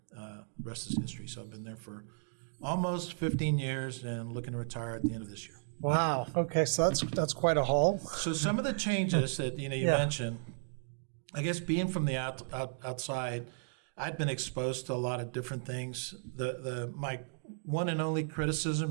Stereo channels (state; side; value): silent; left; digital silence